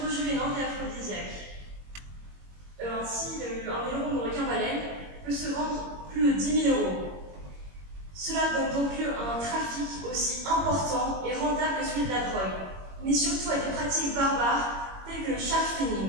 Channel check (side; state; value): left; late; 21 ms